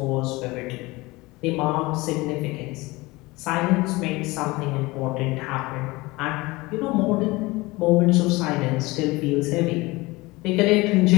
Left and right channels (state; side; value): quieter; right; 22.0 dB